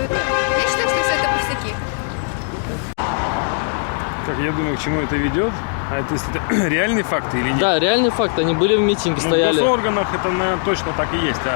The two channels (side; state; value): right; silent; 66 dB below the other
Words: это. Я считаю, что все это пустяки. Как я думаю, к чему это ведет? А это, если это реальные факты или нет? Да, реальный факт. Они были в митинге, Ну, стояли. в госорганах это, наверное, точно так и есть.